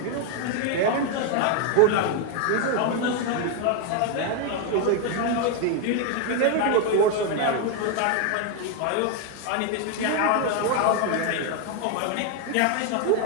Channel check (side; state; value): both; different; correlation 0.01